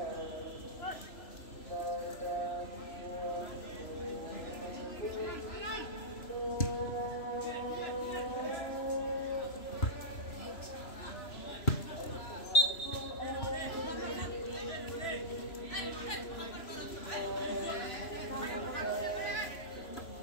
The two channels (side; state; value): right; late; 3.0 ms